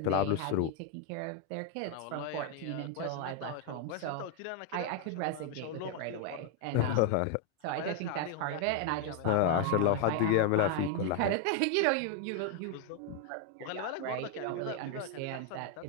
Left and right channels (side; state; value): both; different; correlation 0.01